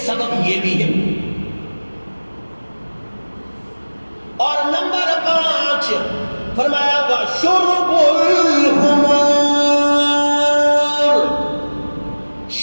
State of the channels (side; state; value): both; inverted; correlation -1.00